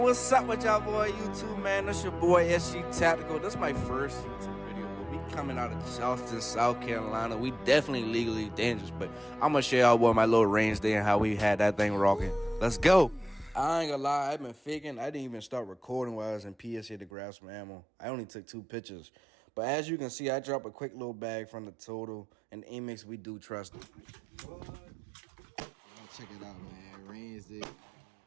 what's up with y'all boy YouTube, man? That's your boy SG Tactical. This is my first YouTube video, but we coming out of Charleston, South Carolina. We definitely legally dangerous, but I'm gonna share y'all boy my little range day and how we had that thing rocking. Let's go. I ain't gonna lie, I've been faking. I didn't even start recording while I was in PSA to grab some ammo. I only took 2 pictures. But as you can see, I dropped a quick little bag from the Total, and Amex, we do trust it. Check it out, man. Range day.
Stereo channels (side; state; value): left; drops out; at 17.1 s